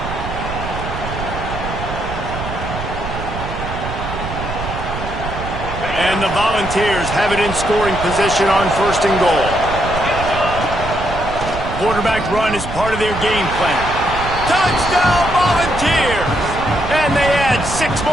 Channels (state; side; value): noise; right; rumble, 7 dB below the sound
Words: And the Volunteers have it in scoring position on 1st and goal. Quarterback run is part of their game plan. Touchdown, Volunteers! And they add 6